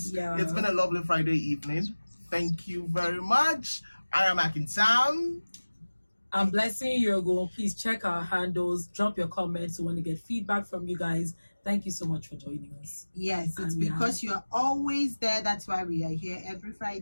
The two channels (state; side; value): inverted; both; correlation -1.00